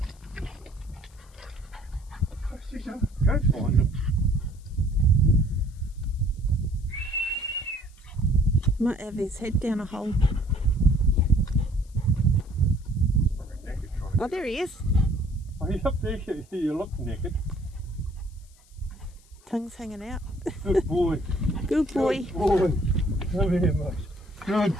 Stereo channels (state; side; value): noise; left; hiss, 29 dB below the sound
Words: Go find him. Might have his head down a hole. Oh, there he is. Are you up there? You look naked. Tongue's hanging out. Good boy. Good boy. Good boy. Come here, mate. Good